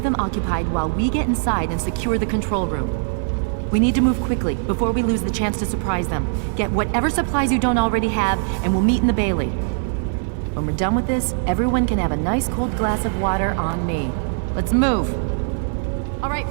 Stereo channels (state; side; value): silent; left; digital silence